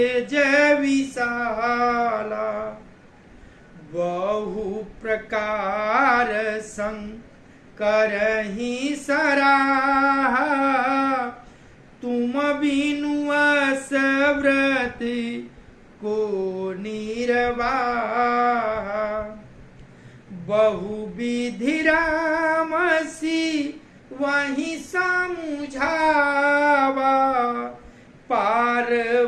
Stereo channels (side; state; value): both; identical; correlation 1.00